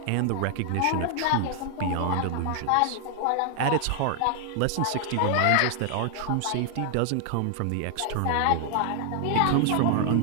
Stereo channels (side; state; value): both; different; correlation 0.00